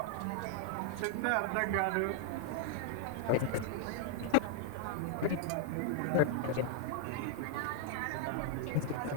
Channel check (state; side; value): different; both; correlation 0.00